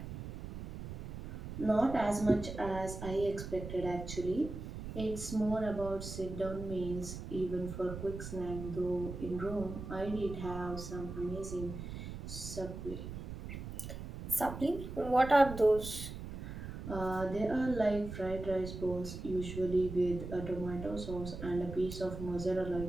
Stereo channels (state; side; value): noise; right; rumble, 8 dB below the sound